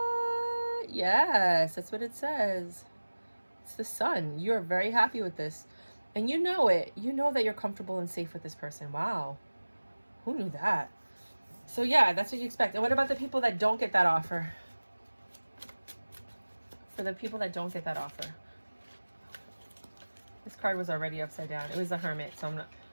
Yes, that's what it says. It's the Sun. You're very happy with this. And you know it. You know that you're comfortable and safe with this person. Wow. Who knew that? So yeah, that's what you expect. And what about the people that don't get that offer? For the people that don't get that offer. This card was already upside down. It was the Hermit. So I'm not...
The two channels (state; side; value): inverted; both; correlation -1.00